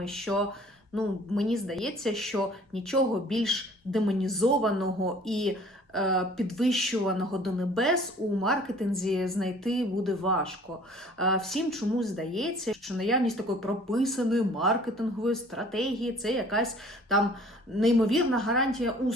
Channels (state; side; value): normal; both; correlation 0.51